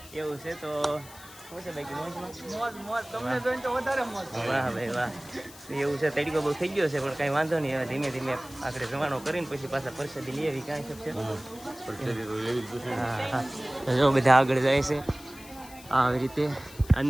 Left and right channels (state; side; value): noise; left; hiss, 19 dB below the sound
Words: એવું છે. તો શું છે બાકી વાહ ભાઈ વાહ એવું છે. તડકો બહુ થઈ ગયો છે પણ કાંઈ વાંધો નહીં. હવે ધીમે ધીમે આપણે જવાનો કરીને પછી પાછા પરસાદી લઈ આવી. કાંઈ શકશે હા જો બધા આગળ જાય છે આવી રીતે